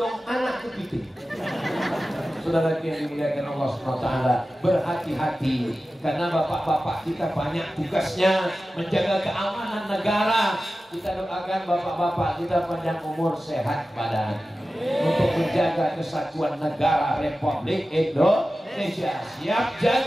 anak kepiting. Saudara yang dimuliakan Allah SWT, berhati-hati karena bapak-bapak kita banyak tugasnya menjaga keamanan negara. Kita doakan bapak-bapak kita panjang umur, sehat badan untuk menjaga kesatuan negara Republik Indonesia. Siap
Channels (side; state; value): both; normal; correlation 0.94